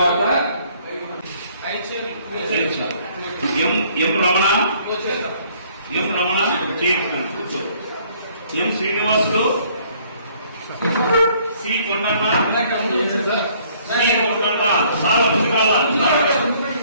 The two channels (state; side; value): inverted; both; correlation -0.61